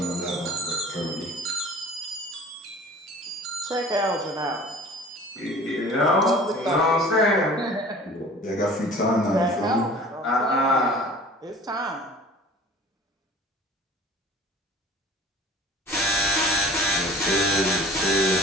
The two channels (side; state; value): both; normal; correlation 0.45